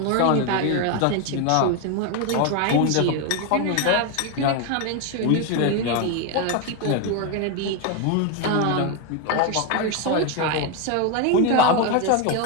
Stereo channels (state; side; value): different; both; correlation 0.02